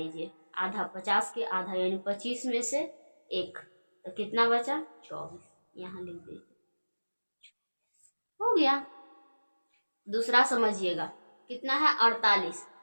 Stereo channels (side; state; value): both; inverted; correlation -1.00